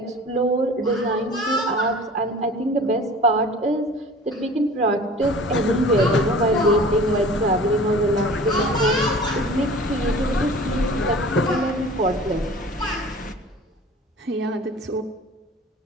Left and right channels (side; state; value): both; normal; correlation 0.43